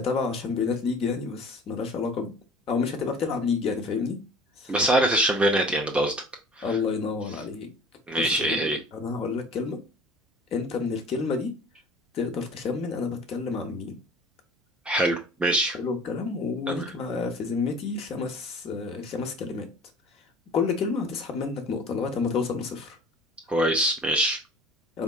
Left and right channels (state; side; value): normal; both; correlation 0.46